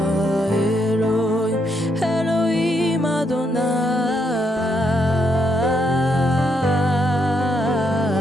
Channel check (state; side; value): normal; both; correlation 0.76